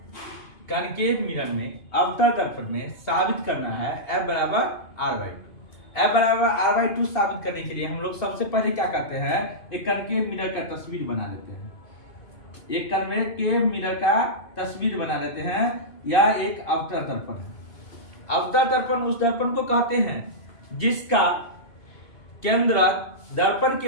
कनकेव मिरर में अवतल दर्पण में साबित करना है F बराबर R/2। F बराबर R/2 साबित करने के लिए हम लोग सबसे पहले क्या करते हैं, एक कनकेव मिरर का तस्वीर बना लेते हैं। एक कनकेव मिरर का तस्वीर बना लेते हैं। यह एक अवतल दर्पण है। अवतल दर्पण उस दर्पण को कहते हैं जिसका केंद्र दर्पण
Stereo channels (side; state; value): right; late; 2.7 ms